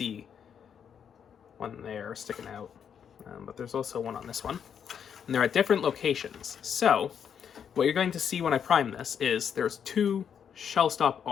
one there sticking out, but there's also one on this one. And they're at different locations. So what you're going to see when I prime this is there's 2 shell stop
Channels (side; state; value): right; quieter; 7.9 dB